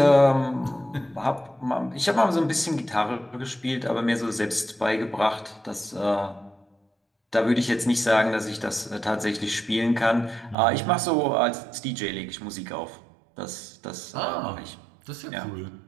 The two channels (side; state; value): left; drops out; at 10.6 s